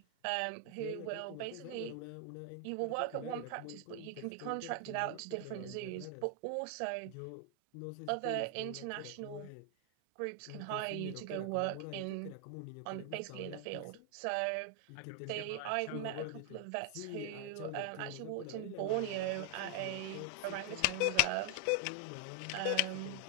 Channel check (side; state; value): both; different; correlation 0.00